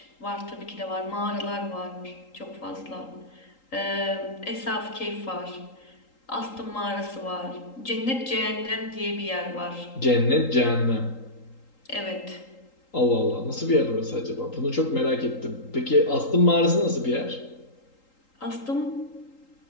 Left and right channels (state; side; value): late; right; 3.8 ms